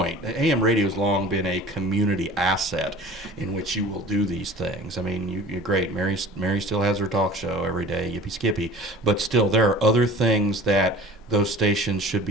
AM radio has long been a community asset in which you will do these things. I mean, you're great. Mary still has her talk show every day, Yippee Skippy, but still there are other things that those stations should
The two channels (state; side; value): normal; both; correlation 0.42